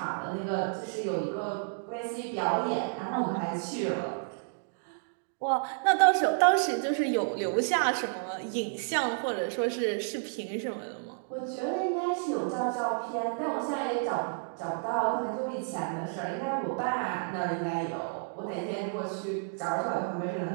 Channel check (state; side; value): silent; left; digital silence